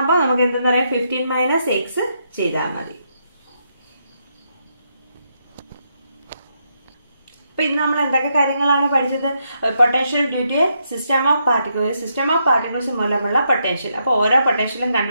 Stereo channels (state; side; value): inverted; both; correlation -0.79